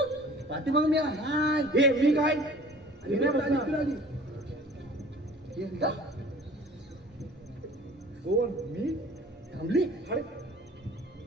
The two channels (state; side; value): normal; both; correlation 0.47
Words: पाठीमाग मी हाय. हे मी काय? हे नाही बसणार. हे का? कोण मी थांबली अरे